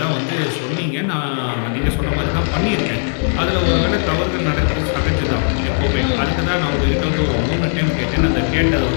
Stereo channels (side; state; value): right; silent; 67 dB below the other